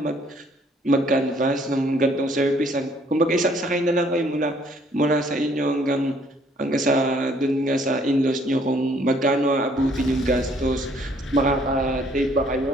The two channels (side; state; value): both; normal; correlation 0.63